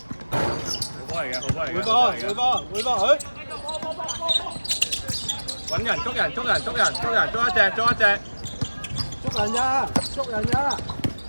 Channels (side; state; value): both; inverted; correlation -1.00